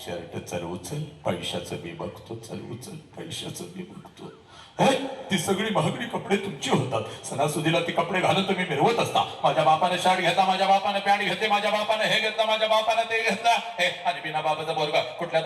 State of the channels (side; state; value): both; identical; correlation 1.00